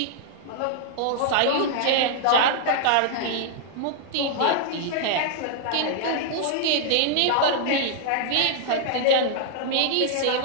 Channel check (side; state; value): both; different; correlation -0.01